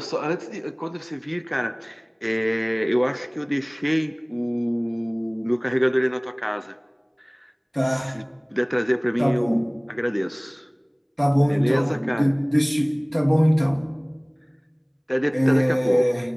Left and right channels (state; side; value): identical; both; correlation 1.00